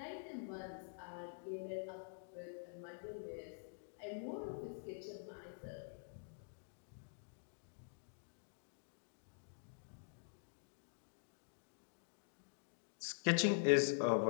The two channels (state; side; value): silent; right; digital silence